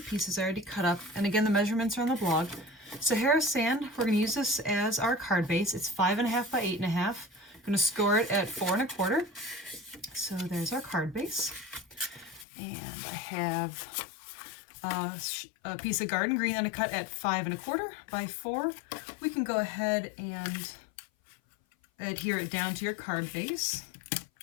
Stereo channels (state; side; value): drops out; right; at 12.5 s